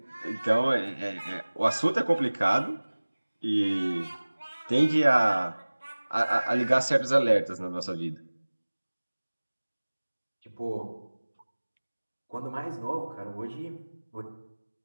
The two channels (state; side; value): inverted; both; correlation -1.00